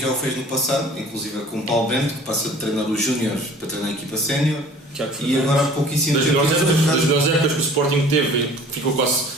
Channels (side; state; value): both; normal; correlation 0.48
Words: o fez no passado, inclusive com o Paulo Bento, que passa de treinar os Júniores para treinar a equipa sénior, e agora há pouquíssimo Das tempo. melhores épocas que o Sporting teve, ficou